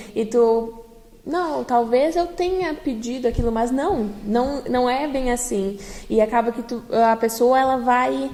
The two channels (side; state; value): both; identical; correlation 1.00